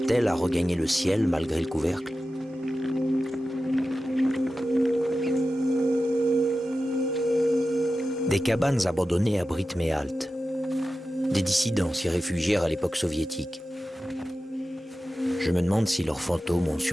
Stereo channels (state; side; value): normal; both; correlation 0.93